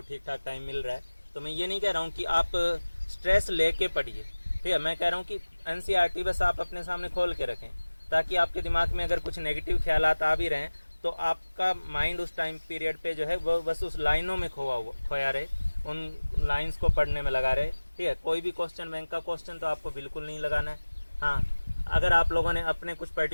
ठीक ठाक टाइम मिल रहा है। तो मैं ये नहीं कह रहा हूँ कि आप स्ट्रेस लेके पढ़िए, ठीक है, मैं कह रहा हूँ कि एनसीईआरटी बस आप अपने सामने खोल के रखें, ताकि आपके दिमाग में अगर कुछ नेगेटिव ख्यालात आ भी रहें तो आपका माइंड उस टाइम पीरियड पे जो है वो बस उस लाइनों में खोया रहे, उन लाइन्स को पढ़ने में लगा रहे। ठीक है, कोई भी क्वेश्चन बैंक का क्वेश्चन तो आपको बिल्कुल नहीं लगाना है। हाँ, अगर आप लोगों ने अपने कुछ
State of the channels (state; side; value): inverted; both; correlation -1.00